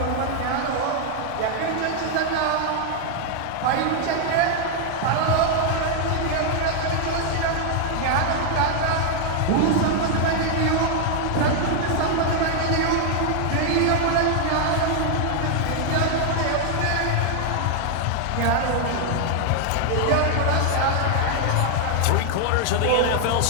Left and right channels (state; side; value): different; both; correlation 0.00